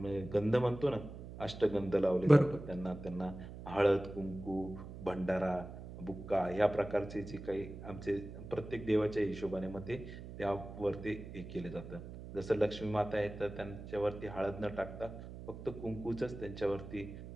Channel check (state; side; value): noise; right; hum, 12 dB below the sound